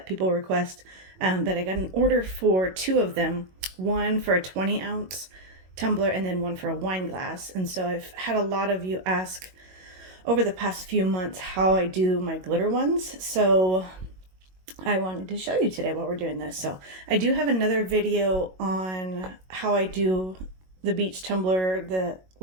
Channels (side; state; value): left; late; 22 ms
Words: people request, but I got an order for two of them, one for a 20-ounce tumbler and then one for a wine glass. And so I've had a lot of you ask over the past few months how I do my glitter ones, so I wanted to show you today while we're doing this. So I do have another video on how I do the beach tumbler